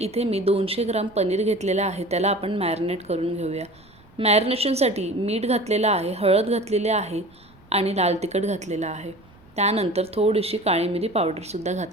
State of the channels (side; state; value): right; noise; rumble, 27 dB below the sound